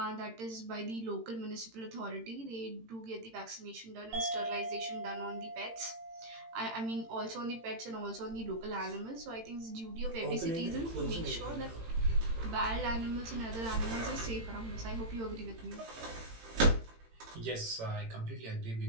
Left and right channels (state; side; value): late; left; 18 ms